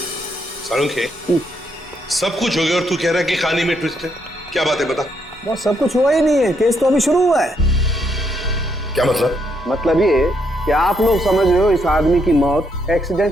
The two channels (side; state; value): both; normal; correlation 0.76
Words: सालुंखे, सब कुछ हो गया और तू कह रहा है कि कहानी में ट्विस्ट है? क्या बात है, बता। वो सब कुछ हुआ ही नहीं है, केस तो अभी शुरू हुआ है। क्या मतलब? मतलब ये कि आप लोग समझ रहे हो इस आदमी की मौत